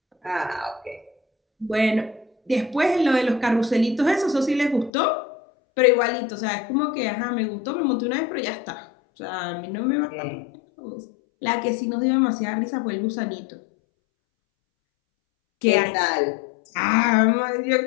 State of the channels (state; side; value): drops out; right; at 4.9 s